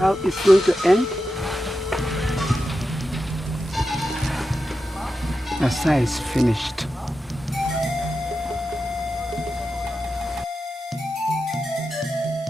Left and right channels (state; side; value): normal; both; correlation 0.90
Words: it's going to end? Asa is finished.